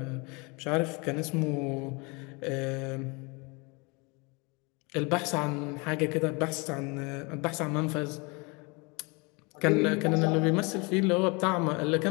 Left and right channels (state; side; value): quieter; right; 28.7 dB